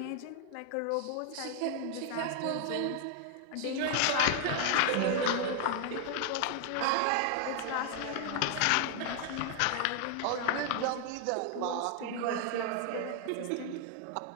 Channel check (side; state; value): both; different; correlation 0.00